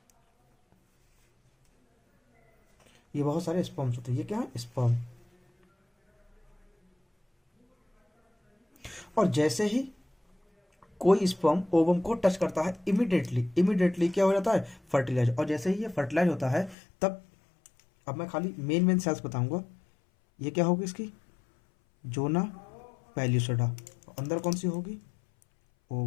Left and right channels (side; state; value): right; drops out; at 16.8 s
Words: ये बहुत सारे स्पर्म्स होते हैं। ये क्या है, स्पर्म। और जैसे ही कोई स्पर्म ओवम को टच करता है, इमीडिएटली क्या हो जाता है, फर्टिलाइज। और जैसे ही ये फर्टिलाइज होता है, तब अब मैं खाली मेन सेल्स बताऊंगा। ये क्या होगी इसकी, जोना पेल्यूसिडा। अंदर कौन सी होगी,